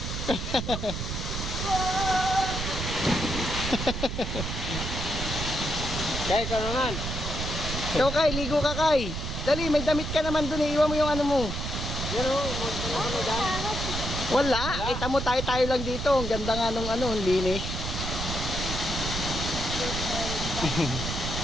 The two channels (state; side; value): noise; right; rumble, 4 dB below the sound